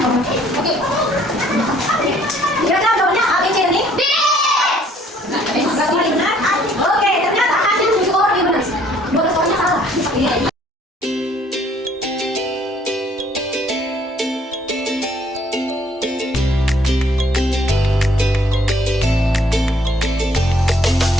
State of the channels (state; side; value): normal; both; correlation 0.62